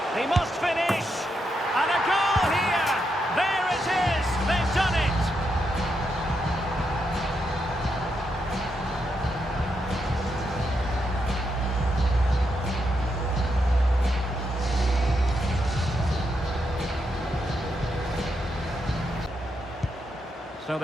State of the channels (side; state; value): both; normal; correlation 0.82